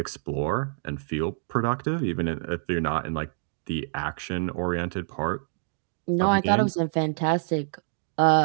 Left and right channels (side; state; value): left; silent; digital silence